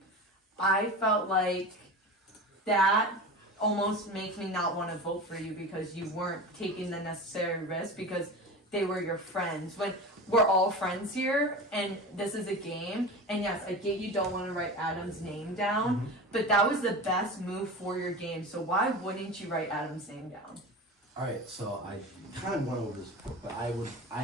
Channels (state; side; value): normal; both; correlation 0.30